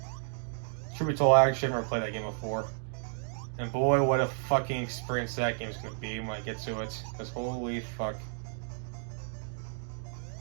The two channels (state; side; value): silent; left; digital silence